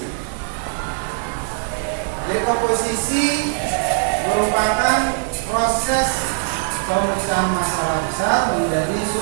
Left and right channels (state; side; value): silent; left; digital silence